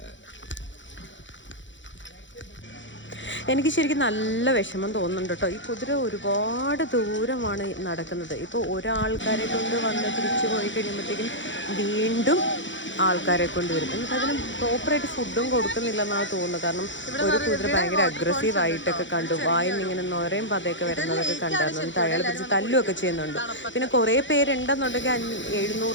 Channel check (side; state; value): right; late; 0.54 ms